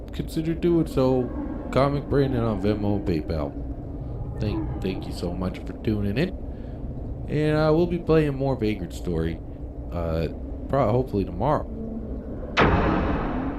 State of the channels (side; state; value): both; identical; correlation 1.00